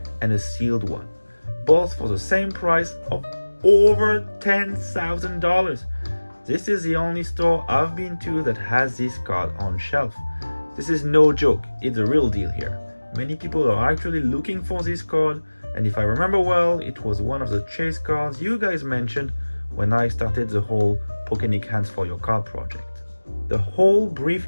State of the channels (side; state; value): both; inverted; correlation -1.00